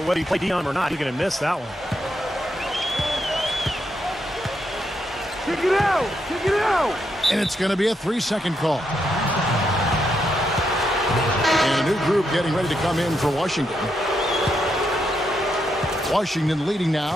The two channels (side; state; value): both; normal; correlation 0.80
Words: whether you play Dion or not, you're going to miss that one. Kick it out! Kick it out! And it's going to be a 3-second call. And a new group getting ready to come in for Washington. Washington leading